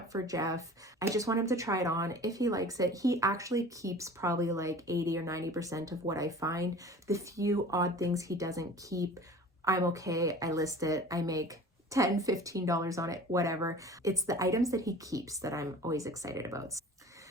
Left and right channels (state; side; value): normal; both; correlation 0.42